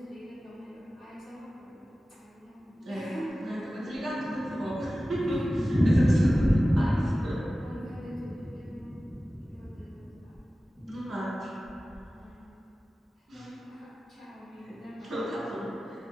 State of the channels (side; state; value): both; normal; correlation 0.96